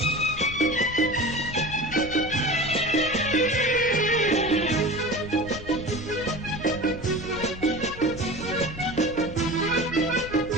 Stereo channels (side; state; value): left; noise; rumble, 13 dB below the sound